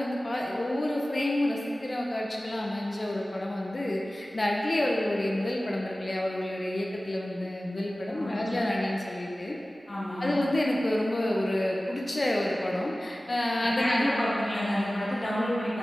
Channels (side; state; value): both; normal; correlation 0.97